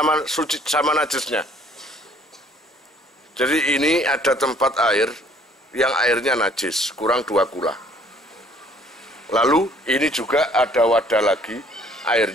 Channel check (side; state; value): both; normal; correlation 0.59